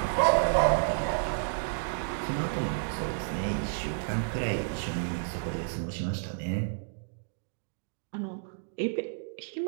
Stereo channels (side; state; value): left; silent; digital silence